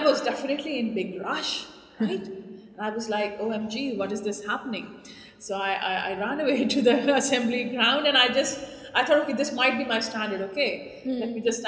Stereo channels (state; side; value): identical; both; correlation 1.00